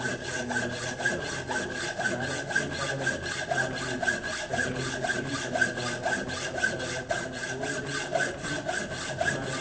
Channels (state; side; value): identical; both; correlation 1.00